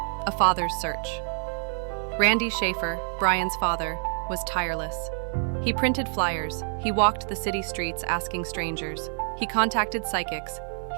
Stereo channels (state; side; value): silent; left; digital silence